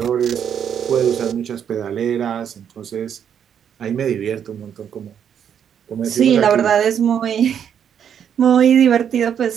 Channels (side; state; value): left; quieter; 8.5 dB